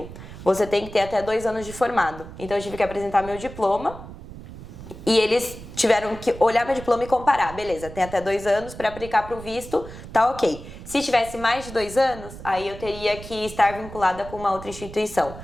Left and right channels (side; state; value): right; noise; rumble, 14 dB below the sound